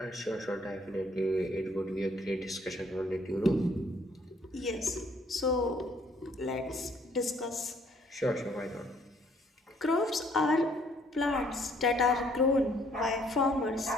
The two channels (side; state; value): both; normal; correlation 0.63